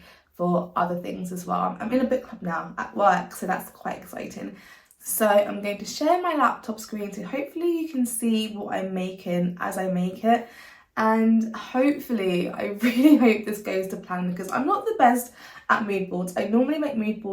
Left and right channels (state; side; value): identical; both; correlation 1.00